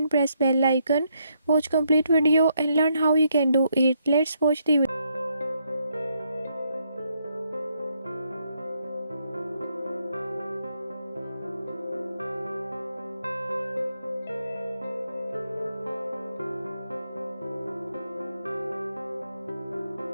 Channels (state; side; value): inverted; both; correlation -0.75